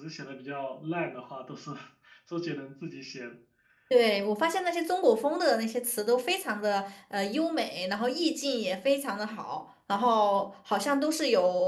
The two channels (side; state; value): both; identical; correlation 1.00